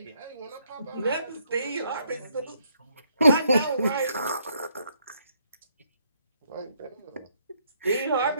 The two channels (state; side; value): inverted; both; correlation -0.72